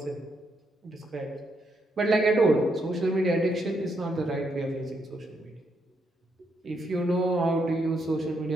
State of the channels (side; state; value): both; normal; correlation 0.78